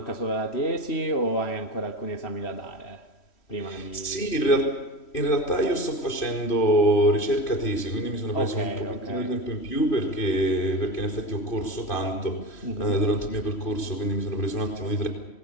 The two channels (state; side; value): late; right; 3.1 ms